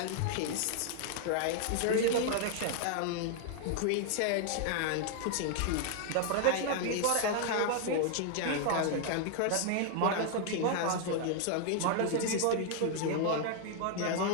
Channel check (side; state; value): both; different; correlation 0.00